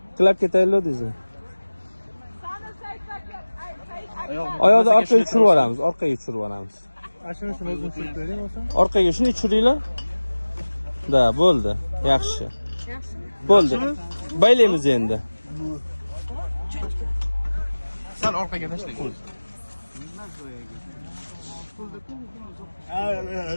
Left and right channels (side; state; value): both; inverted; correlation -1.00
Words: Qilib ketaylik deysiz. Oyoqni orqaga tushirib yuboramiz, orqaga tushirib yuboramiz. Ashunisini o'zim tushirib bering bo'lsa. Orqaga shuni tushiringlar. Da, bo'ldi. Yaxshi. Yaxshimi? Bo'ldi. Baylaymiz endi. Sal orqaga tashlang.